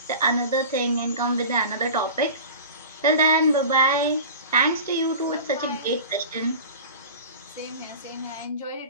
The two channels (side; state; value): both; inverted; correlation -0.35